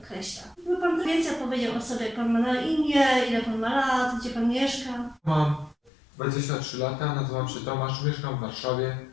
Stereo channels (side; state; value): right; drops out; at 5.9 s